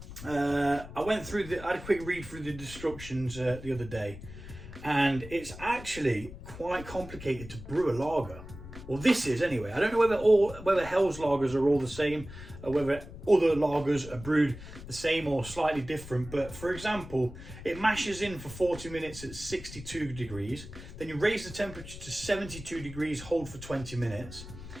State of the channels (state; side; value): noise; left; rumble, 13 dB below the sound